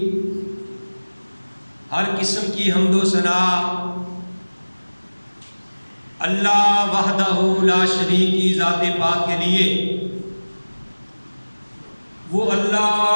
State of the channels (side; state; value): both; inverted; correlation -1.00